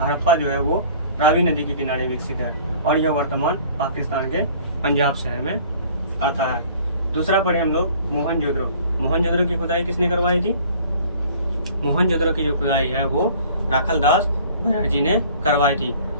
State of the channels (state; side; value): inverted; both; correlation -0.51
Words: जो है वो रावी नदी के किनारे विकसित है और यह वर्तमान पाकिस्तान के पंजाब शहर में आता है। दूसरा पढ़े हम लोग मोहनजोदड़ो। मोहनजोदड़ो की खुदाई किसने करवाई थी? मोहनजोदड़ो की जो खुदाई है वो राखलदास बनर्जी ने करवाई थी।